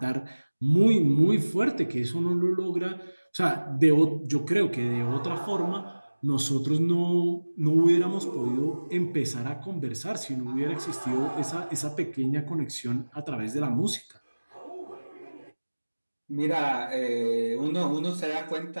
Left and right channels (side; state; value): both; inverted; correlation -1.00